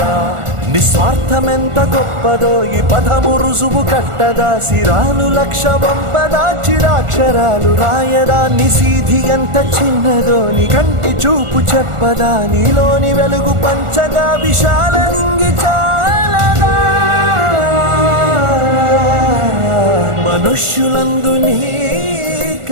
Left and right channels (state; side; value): late; left; 1.4 ms